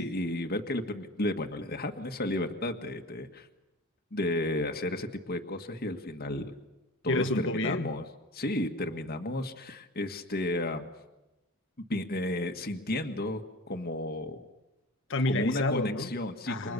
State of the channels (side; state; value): both; normal; correlation 0.37